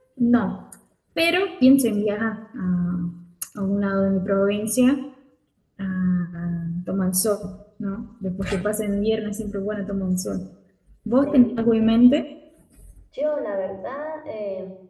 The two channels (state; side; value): identical; both; correlation 1.00